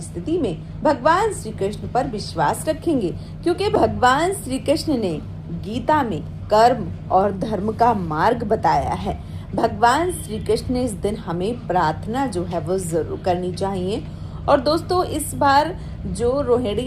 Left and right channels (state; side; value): identical; both; correlation 1.00